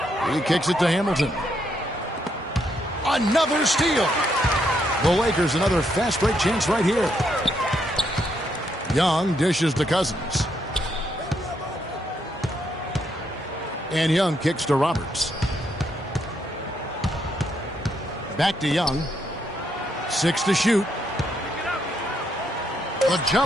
He kicks it to Hamilton. Another steal. The Lakers another fast break chance right here. Young dishes to Cousins. And Young kicks to Roberts. Back to Young. 6 to shoot. The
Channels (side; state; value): both; normal; correlation 0.76